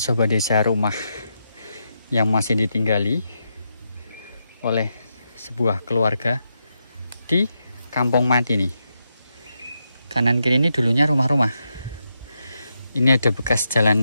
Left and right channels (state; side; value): inverted; both; correlation -0.84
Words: desa, rumah yang masih ditinggali oleh sebuah keluarga di Kampung Mati nih. Kanan kiri ini dulunya rumah-rumah. Ini ada bekas